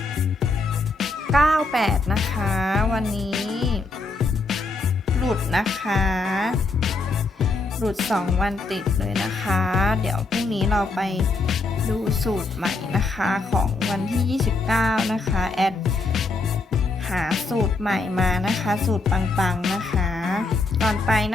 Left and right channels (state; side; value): quieter; right; 3.5 dB